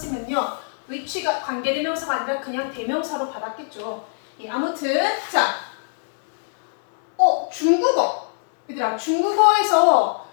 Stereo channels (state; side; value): silent; right; digital silence